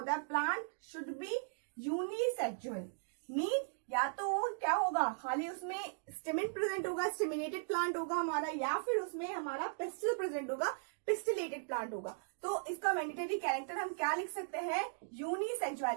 है, plant should be unisexual. Mean या तो क्या होगा, खाली उसमें स्टेमिन प्रेजेंट होगा, स्टेमिनेटेड प्लांट होगा हमारा, या फिर उसमें हमारा पिस्टिल प्रेजेंट होगा, पिस्टिलेटेड प्लांट होगा. तो इसका मैंडेटरी कैरेक्टर हम क्या लिख सकते हैं,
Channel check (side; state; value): left; silent; digital silence